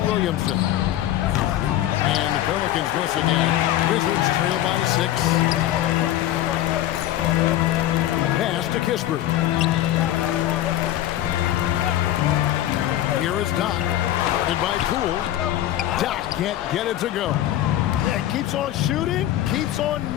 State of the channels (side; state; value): right; quieter; 13.2 dB